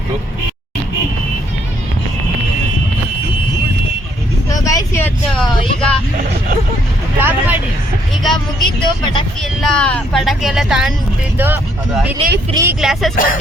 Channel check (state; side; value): normal; both; correlation 0.69